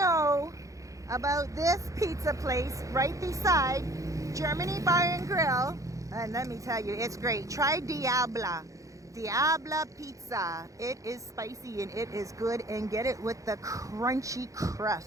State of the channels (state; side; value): late; left; 0.16 ms